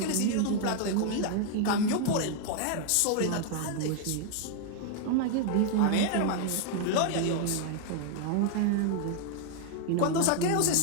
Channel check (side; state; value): both; different; correlation 0.00